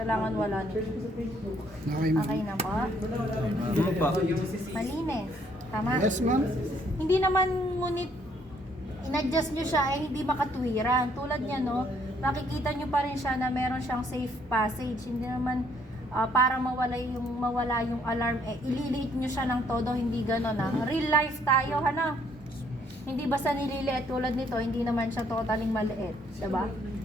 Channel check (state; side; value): normal; both; correlation 0.66